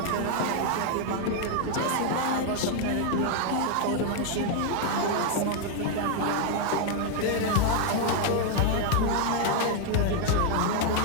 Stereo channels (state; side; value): different; both; correlation 0.00